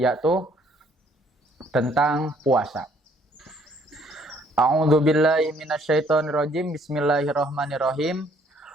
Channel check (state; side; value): normal; both; correlation 0.63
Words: tentang puasa. A'udzu billahi minasyaitonir rajim. Bismillahirrahmanirrahim.